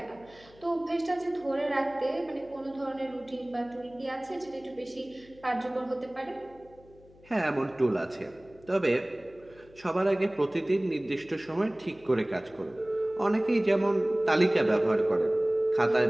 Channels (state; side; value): noise; left; hum, 26 dB below the sound